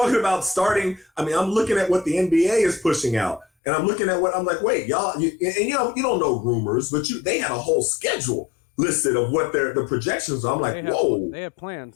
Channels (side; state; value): right; drops out; at 3.5 s